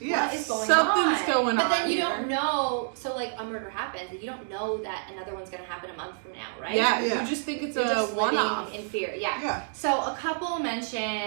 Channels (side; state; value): left; silent; digital silence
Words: is going something's going on. But then you don't know. So like a murder happens, and you don't know that another one's going to happen a month from now, right? Yeah. You just think it's a one-off in fear. Yeah. So a couple